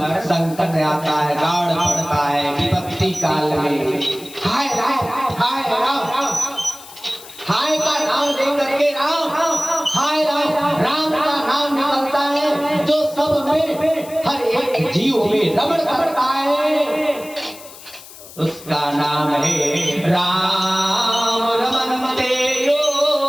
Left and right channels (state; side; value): noise; left; hiss, 18 dB below the sound